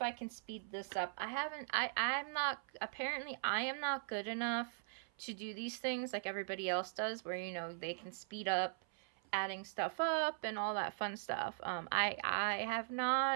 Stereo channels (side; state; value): left; silent; 51 dB below the other